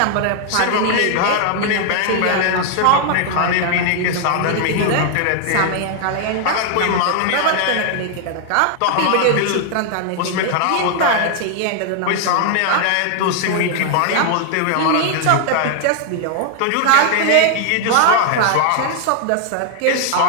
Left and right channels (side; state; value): both; different; correlation 0.00